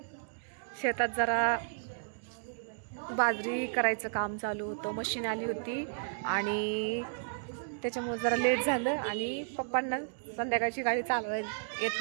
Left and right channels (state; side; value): silent; left; digital silence